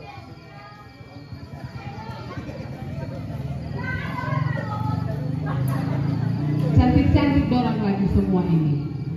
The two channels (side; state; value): both; identical; correlation 1.00